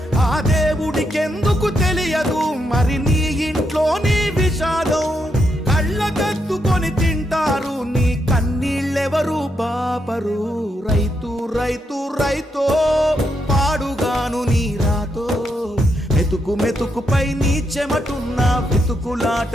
ఆ దేవుడికెందుకు తెలియదు మరి నీ ఇంట్లో నీ విషాదం కళ్ళకద్దుకొని తింటారు నీ కన్నీళ్ళెవరు పాపరు రైతు రైతు రైతో పాడుగాను నీ రాతో మెతుకు మెతుకుపై నీ చెమటున్న వెతుకులాట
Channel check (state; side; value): normal; both; correlation 0.80